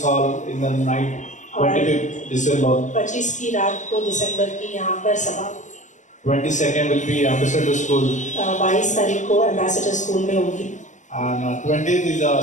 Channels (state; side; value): late; right; 0.35 ms